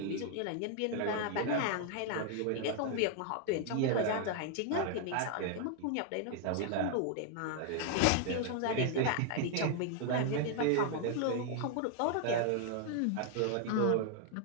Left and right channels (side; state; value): both; different; correlation 0.00